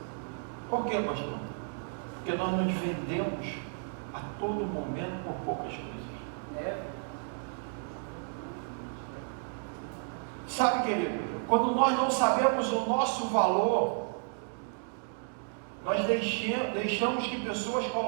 Por que, pastor? Porque nós nos vendemos a todo momento por poucas coisas. Sabe, querido, quando nós não sabemos o nosso valor, nós deixamos que pessoas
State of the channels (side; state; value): left; silent; 56 dB below the other